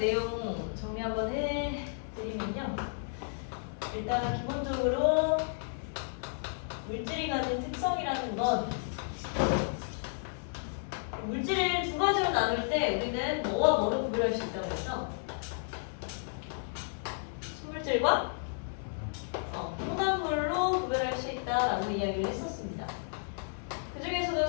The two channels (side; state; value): right; silent; digital silence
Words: 정리 한번 해드리면요. 일단 기본적으로 물질이 가진 특성이라는 건 물질을 두 가지로 나눌 때 우리는 뭐와 뭐를 구별할 수 있다고 했어? 순물질과 혼합물로 구별할 수 있다라고 이야기를 했었습니다. 그 중에서도